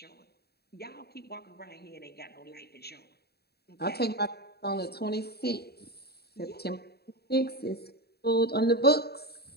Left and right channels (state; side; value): late; right; 0.47 ms